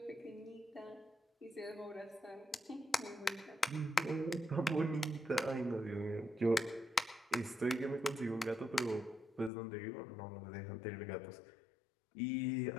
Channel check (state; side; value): drops out; right; at 9.5 s